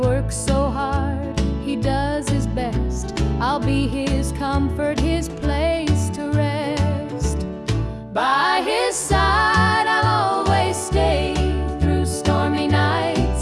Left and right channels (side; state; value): both; identical; correlation 1.00